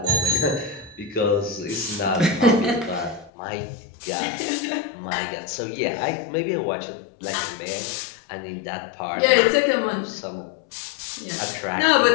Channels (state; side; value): drops out; right; at 3.3 s